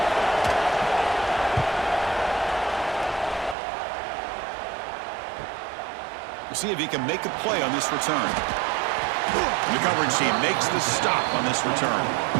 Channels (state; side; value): drops out; left; at 3.6 s